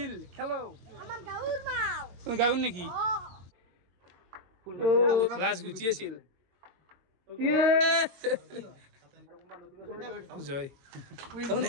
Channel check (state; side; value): late; left; 22 ms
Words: খেলো আমাৰ গাউৰ মাও তুমি গাউন নেকি ও ক্লাস গুটি আছিল জয় তাৰমানে